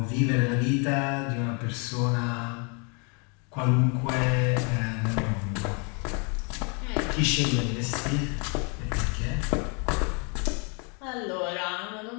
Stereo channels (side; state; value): right; quieter; 35.1 dB